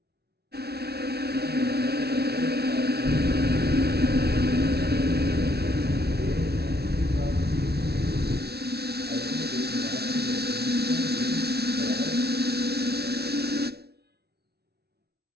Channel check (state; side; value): late; left; 0.47 ms